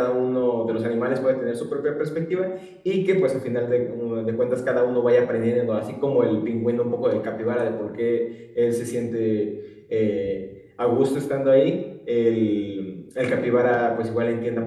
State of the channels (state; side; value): identical; both; correlation 1.00